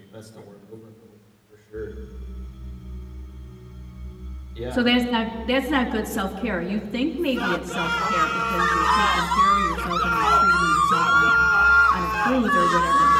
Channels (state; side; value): identical; both; correlation 1.00